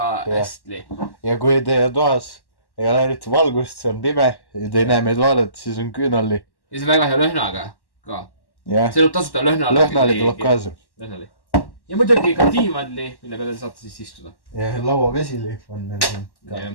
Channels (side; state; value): right; late; 1.1 ms